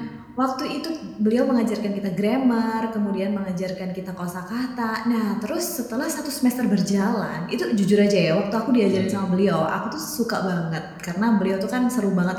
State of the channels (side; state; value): both; identical; correlation 1.00